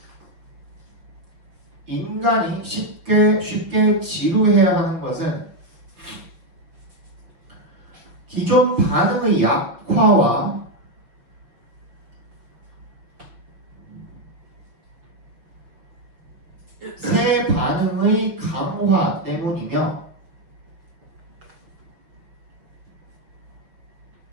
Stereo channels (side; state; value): left; late; 6.1 ms